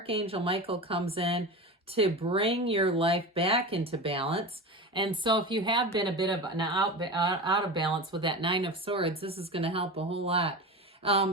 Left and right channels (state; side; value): normal; both; correlation 0.27